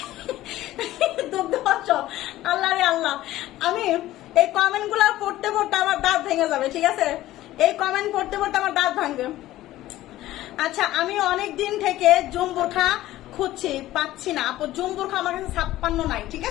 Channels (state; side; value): quieter; right; 15.4 dB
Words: দুগ্ধ অঞ্চল। আল্লাহ রে আল্লাহ, আমি এই কমেন্ট গুলা পড়তে পড়তে আমার দাঁত ভেঙে যাবে, ঠিক আছে। এই কমেন্ট পড়তে পড়তে আমার দাঁত ভাঙবে। আচ্ছা, আমি অনেক দিন থেকে জুম বোরখা খুঁজছি, পাচ্ছি না আপু। জুম বোরখা আমার কাছে 56 নাই, ঠিক